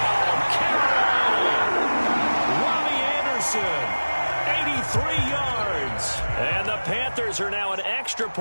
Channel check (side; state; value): both; inverted; correlation -1.00